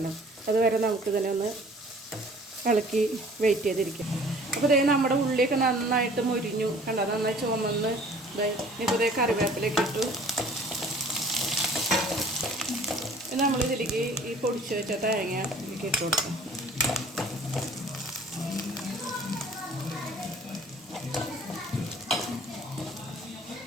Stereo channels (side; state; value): both; normal; correlation 0.51